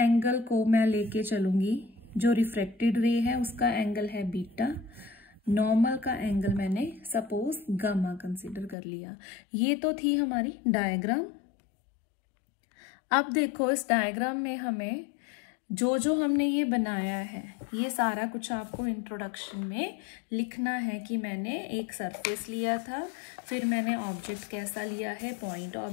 को मैं लेके चलूंगी, जो रिफ्रैक्टेड रे है उसका एंगल है बीटा, नॉर्मल का एंगल मैंने सपोज गामा कंसीडर कर लिया। ये तो थी हमारी डायग्राम। अब देखो, इस डायग्राम में हमें जो हमने ये बनाया है, ये सारा कुछ आपको इंट्रोडक्शन में लिखना है कि मैंने एक सरफेस लिया था, फिर मैंने ऑब्जेक्ट कैसा लिया है, पॉइंट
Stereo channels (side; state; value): right; drops out; at 8.8 s